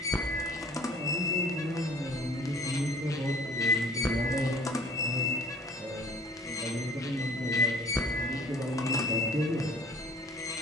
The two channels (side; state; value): both; normal; correlation 0.51